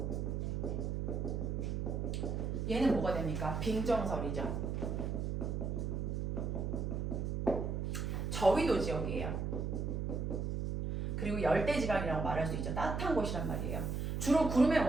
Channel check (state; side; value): noise; right; hum, 1 dB below the sound